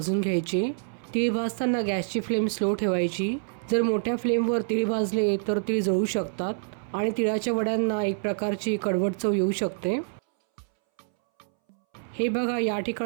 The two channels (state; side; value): silent; left; 60 dB below the other